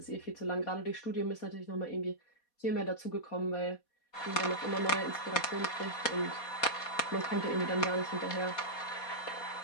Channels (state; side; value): late; right; 4.2 ms